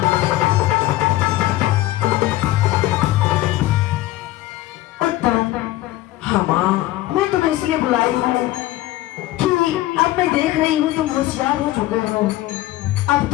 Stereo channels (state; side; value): quieter; right; 16.2 dB